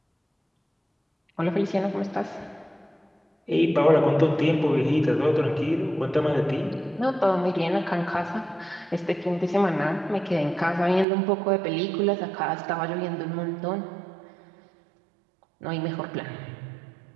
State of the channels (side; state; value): left; drops out; at 11.1 s